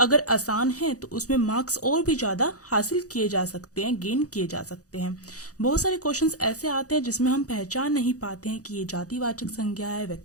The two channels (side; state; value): right; late; 0.67 ms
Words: आसान है तो उसमें मार्क्स और भी ज़्यादा हासिल किए जा सकते हैं, गेन किए जा सकते हैं। बहुत सारे क्वेश्चंस ऐसे आते हैं जिसमें हम पहचान नहीं पाते हैं कि ये जातिवाचक संज्ञा है,